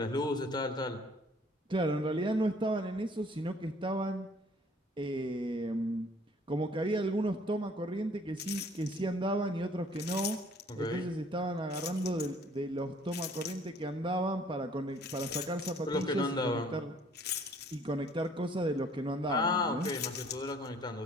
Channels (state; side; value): normal; both; correlation 0.58